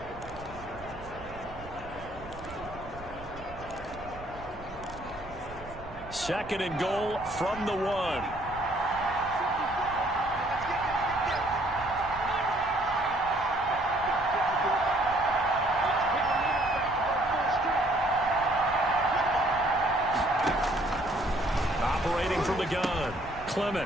second and goal from the 1. Operating from the gun,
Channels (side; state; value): right; noise; rumble, 17 dB below the sound